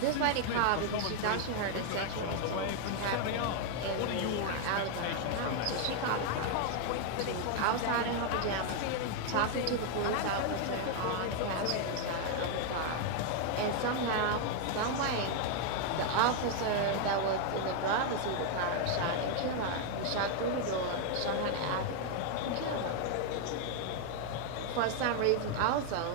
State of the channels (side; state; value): both; different; correlation 0.00